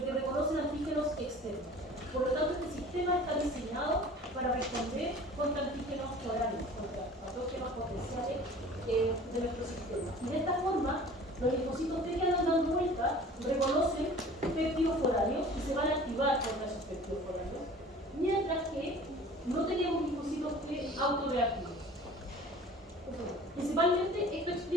que reconocen antígenos externos. Por lo tanto, este sistema está diseñado para responder contra antígenos forales, contra patógenos potenciales de nuestro sistema. Y de esta forma, los linfocitos T que andan dando vuelta reconocen péptidos forales y se van a activar contra esos péptidos forales, mientras que no tenemos linfocitos T autorreactivos. Principalmente esto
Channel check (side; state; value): both; normal; correlation 0.45